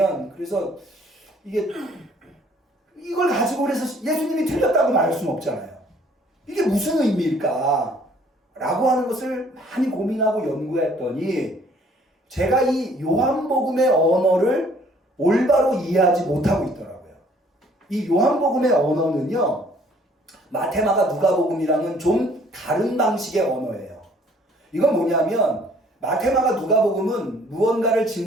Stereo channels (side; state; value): both; normal; correlation 0.59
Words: 그래서 이걸 가지고 그래서 예수님이 틀렸다고 말할 수는 없잖아요. 이게 무슨 의미일까? 라고 하는 것을 많이 고민하고 연구했더니 제가 이 요한복음의 언어를 올바로 이해하지 못하고 있더라고요. 이 요한복음의 언어는요, 마태마가 누가복음이랑은 좀 다른 방식의 언어예요. 이건 뭐냐면 마태마가 누가복음은 무언가를